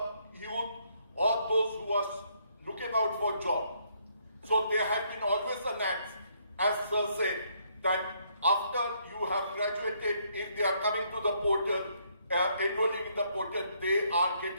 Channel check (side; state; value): both; inverted; correlation -0.70